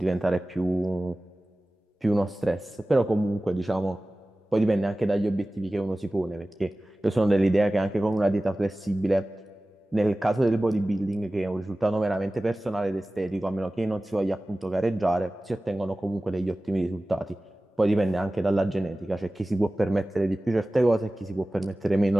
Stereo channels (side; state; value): both; normal; correlation 0.97